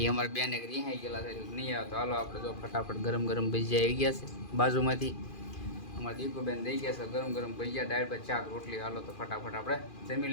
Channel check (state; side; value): late; right; 2.4 ms